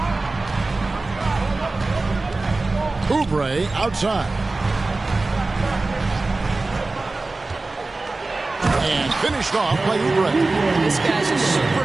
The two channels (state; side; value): quieter; left; 3.3 dB